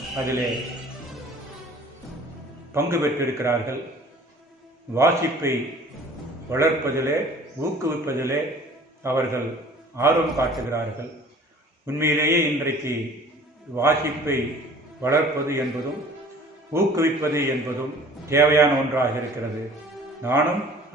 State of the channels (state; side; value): normal; both; correlation 0.49